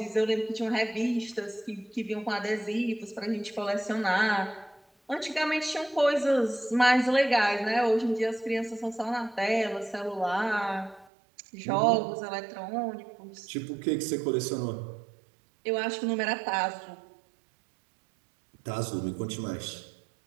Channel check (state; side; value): drops out; left; at 11.1 s